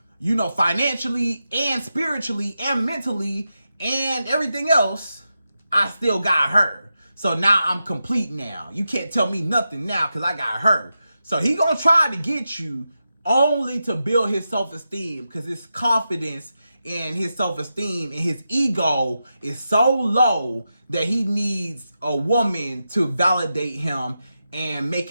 you know, financially and spiritually and mentally and everything else, I still got her. So now I'm complete now. You can't tell me nothing now because I got her. So he gonna try to get you only to build his self-esteem, because his confidence and his self-esteem and his ego is so low that he needs a woman to validate him and make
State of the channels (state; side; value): inverted; both; correlation -0.89